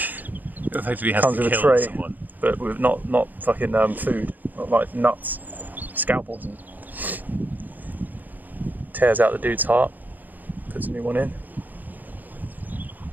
Effectively has Comes to with a kill tray. someone. But with not fucking food, not like nuts, scalpels, and tears out the dude's heart, puts a new one in.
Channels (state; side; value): late; left; 0.084 ms